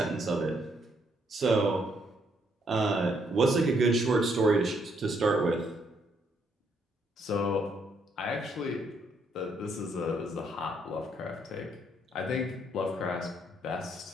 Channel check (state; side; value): normal; both; correlation 0.72